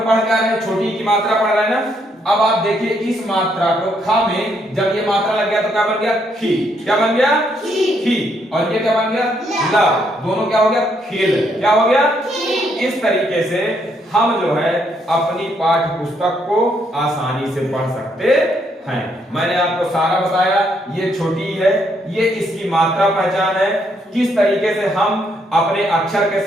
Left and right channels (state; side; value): normal; both; correlation 0.73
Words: क्या रहे हैं? छोटी की मात्रा पढ़ रहे हैं ना। अब आप देखिए इस मात्रा को खा में जब ये मात्रा लग गया तो क्या बन गया? खी। क्या बन गया? खी। और ये क्या बन गया? ला। दोनों क्या हो गया? खिल। क्या हो गया? इस तरीके से हम जो है अपनी पाठ्य पुस्तक को आसानी से पढ़ सकते हैं। मैंने आपको सारा बताया, ये छोटी है, ये इसकी मात्रा पहचान है, किस तरीके से हम अपने अक्षर के